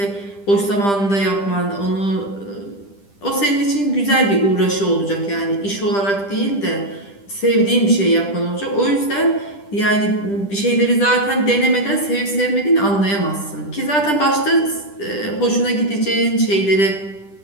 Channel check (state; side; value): late; right; 10 ms